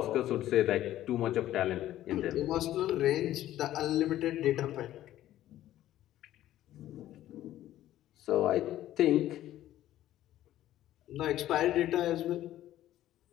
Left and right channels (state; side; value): quieter; right; 13.5 dB